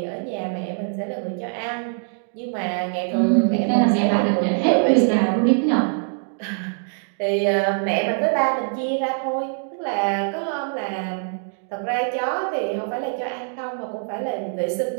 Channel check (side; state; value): left; silent; 56 dB below the other